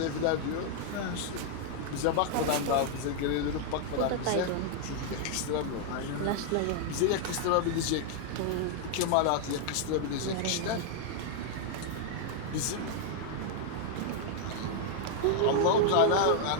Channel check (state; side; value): different; both; correlation 0.00